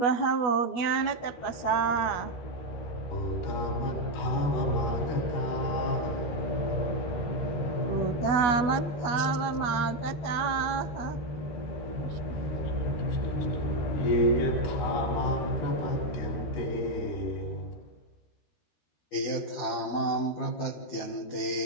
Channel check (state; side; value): late; right; 12 ms